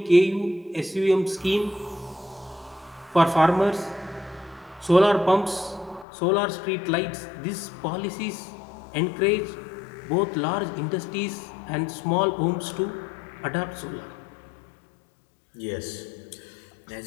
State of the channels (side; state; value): right; drops out; at 6.1 s